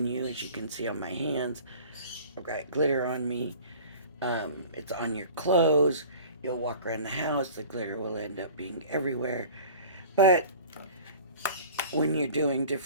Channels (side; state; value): both; inverted; correlation -0.43